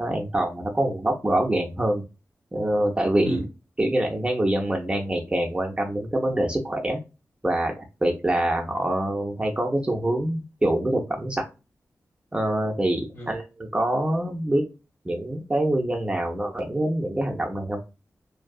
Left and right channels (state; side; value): normal; both; correlation 0.93